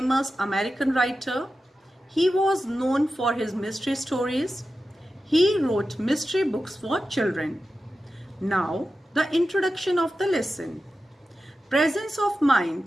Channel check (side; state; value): both; normal; correlation 0.92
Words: American writer. He was known for his mystery stories. He wrote mystery books for children. Now, the introduction of the lesson. Presence of